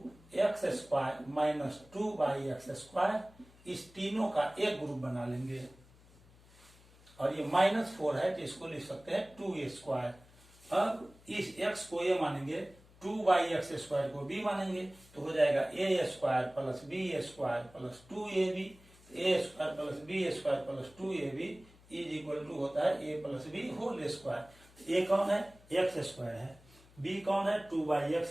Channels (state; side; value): noise; left; hum, 25 dB below the sound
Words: x square minus 2 by x square, इस तीनों का एक ग्रुप बना लेंगे और ये -4 है तो इसको लिख सकते हैं 2a स्क्वायर। अब इस x को a मानेंगे, 2 बाई एक्स स्क्वायर को b मानेंगे, तो हो जाएगा a square plus b square plus 2ab। a square plus b square plus 2ab is equal to होता है a plus b whole square. a कौन है, एक्स स्क्वायर है, b कौन है, 2 बाई